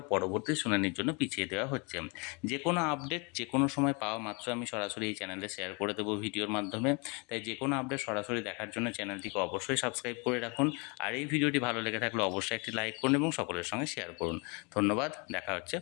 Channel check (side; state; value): right; quieter; 31.7 dB